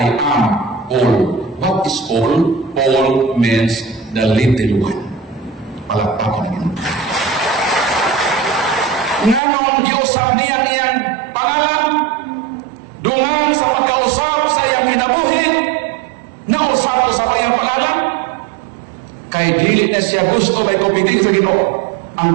am Paul. What is Paul? Paul means the little one. Palakpakan na yun. Nga nung Diyos sa niyan pangalan, dungan sa pagkausap sa iyang kinabuhi, nausap sa kanyang pangalan, kay dili na siya gusto may pupitin sa Ginoo.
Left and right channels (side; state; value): left; drops out; at 9.4 s